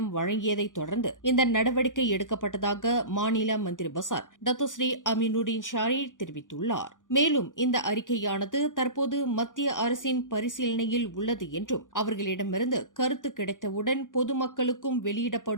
வழங்கியதைத் தொடர்ந்து இந்த நடவடிக்கை எடுக்கப்பட்டதாக மாநில மந்திரி பசார் டத்தோஸ்ரீ அமீனுடின் ஷாரி தெரிவித்துள்ளார். மேலும் இந்த அறிக்கையானது தற்போது மத்திய அரசின் பரிசீலனையில் உள்ளது என்றும் அவர்களிடமிருந்து கருத்து கிடைத்தவுடன் பொதுமக்களுக்கும்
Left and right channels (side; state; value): right; late; 0.88 ms